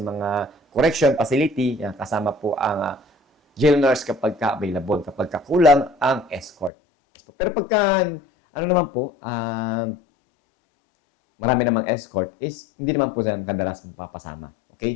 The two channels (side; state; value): right; drops out; at 6.7 s